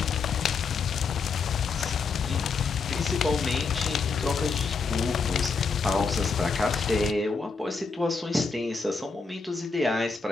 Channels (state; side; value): quieter; right; 4.7 dB